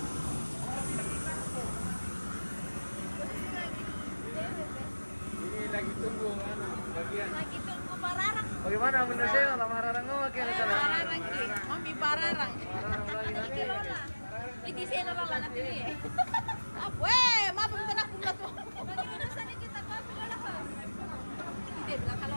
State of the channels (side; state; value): both; inverted; correlation -1.00